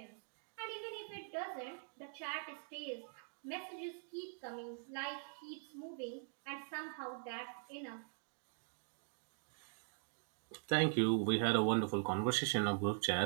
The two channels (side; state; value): left; silent; digital silence